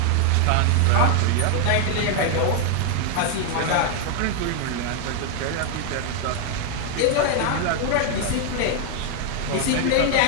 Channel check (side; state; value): both; different; correlation 0.00